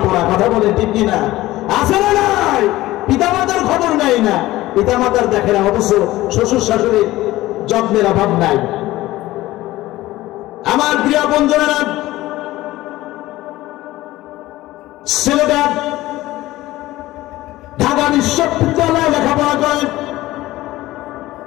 পোড়া, কথা বলে ঠিক কিনা? আছে না নাই? পিতামাতার খবর নাই না, পিতামাতার দেখে না, অথচ শ্বশুর শাশুড়ির যত্নের অভাব নাই। আমার প্রিয় বন্ধুরা, ছেলেটা ঢাকা বিশ্ববিদ্যালয়ে লেখাপড়া করে,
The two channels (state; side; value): quieter; right; 17.0 dB